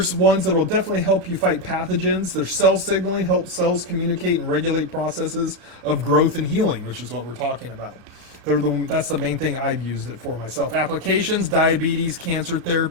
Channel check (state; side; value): late; left; 33 ms